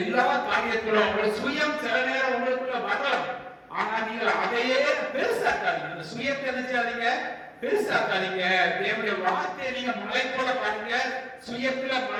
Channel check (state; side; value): identical; both; correlation 1.00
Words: எல்லா காரியத்திலும் உங்க சுயம் சில நேரம் உங்களுக்குள்ள வரலாம். ஆனா நீங்க அதையே பெருசாக்காதீங்க. அந்த சுயத்தை நினைச்சாதீங்க, பெருசாக்காதீங்க. தேவனுடைய வார்த்தையை நீங்க மலை போல பாருங்க. சுயத்துல